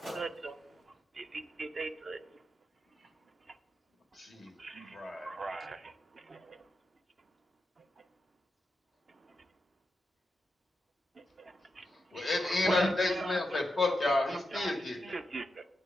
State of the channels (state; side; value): normal; both; correlation 0.87